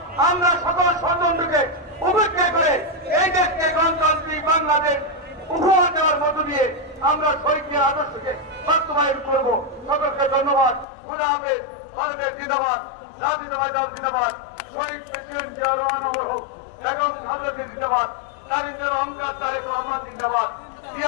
আমরা সকল ষড়যন্ত্রকে উপেক্ষা করে এই দেশকে গণতান্ত্রিক বাংলাদেশ উপহার দেওয়ার মধ্য দিয়ে আমরা শহীদের আদর্শকে বাস্তবায়ন করব। সকলকে ধন্যবাদ। খোদা হাফেজ। ভারতের জিন্দাবাদ, জাতীয়তাবাদী দল জিন্দাবাদ, শহীদ প্রেসিডেন্ট জিয়াউর রহমান অমর হোক, বেগম খালেদা জিয়া জিন্দাবাদ, তারিন্দের অহংকার তারেক রহমান জিন্দাবাদ,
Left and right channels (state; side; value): drops out; right; at 10.9 s